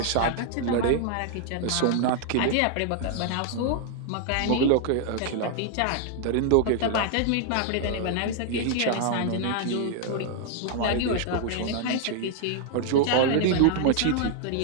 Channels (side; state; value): both; different; correlation 0.00